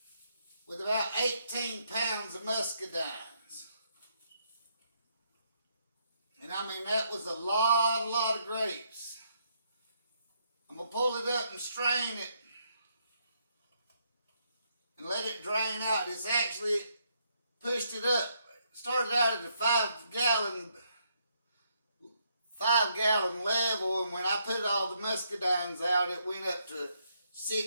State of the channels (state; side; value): inverted; both; correlation -0.75